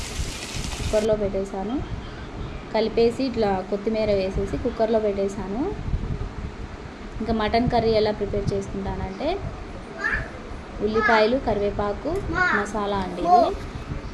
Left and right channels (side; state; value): both; identical; correlation 1.00